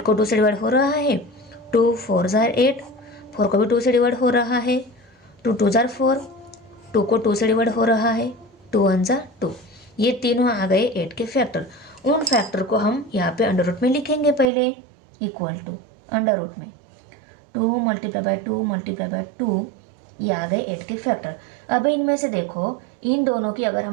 को 2 से डिवाइड हो रहा है, 2 4 8, 4 को भी 2 से डिवाइड हो रहा है, 2 2 4, 2 को 2 से डिवाइड हो रहा है, 2 1 2, ये तीनों आ गए 8 के फैक्टर। उन फैक्टर को हम यहाँ पे अंडर रूट में लिखेंगे पहले, इक्वल टू अंडर रूट में 2 × 2 × 2, ये आ गए 8 के फैक्टर। अब इनमें से देखो इन दोनों की अगर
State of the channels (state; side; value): drops out; left; at 14.5 s